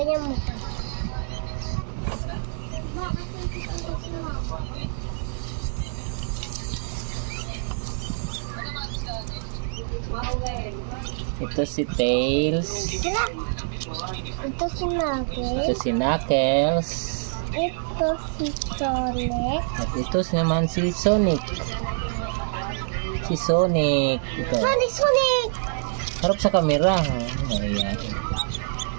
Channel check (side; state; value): left; silent; digital silence